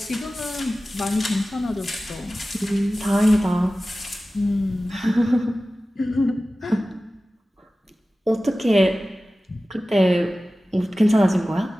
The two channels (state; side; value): normal; both; correlation 0.96